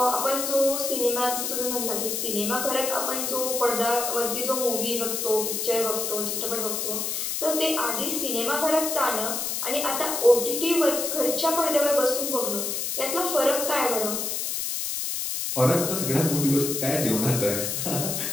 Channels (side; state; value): left; noise; hiss, 2 dB below the sound